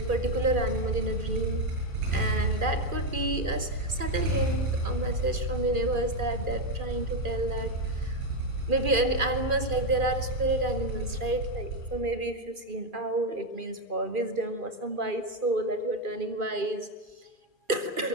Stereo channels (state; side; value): late; left; 2.4 ms